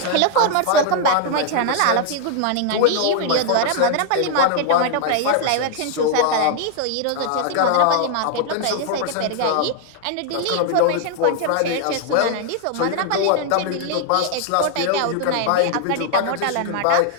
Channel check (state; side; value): different; both; correlation 0.00